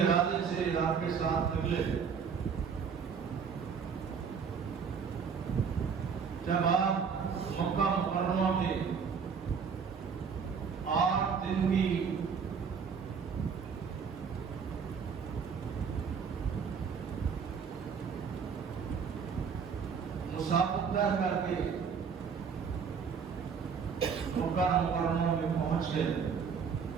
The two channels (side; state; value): left; quieter; 6.3 dB